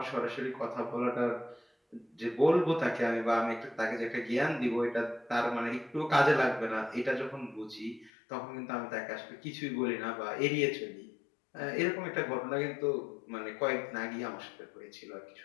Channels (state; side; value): drops out; right; at 8.1 s